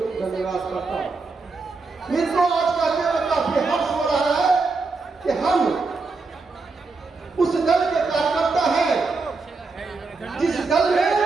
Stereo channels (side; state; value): left; quieter; 4.1 dB